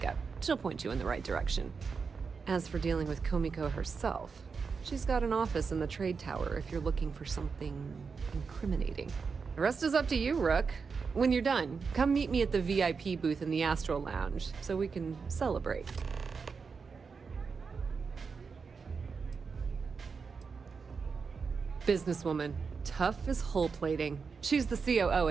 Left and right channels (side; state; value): left; quieter; 5.3 dB